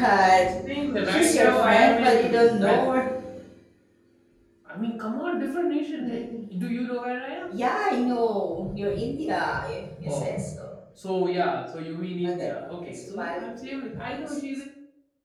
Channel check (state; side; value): identical; both; correlation 1.00